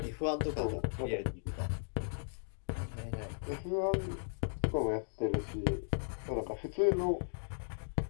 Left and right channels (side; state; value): right; silent; digital silence